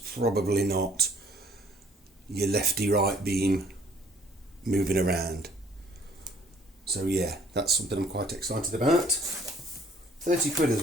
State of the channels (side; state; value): both; normal; correlation 0.58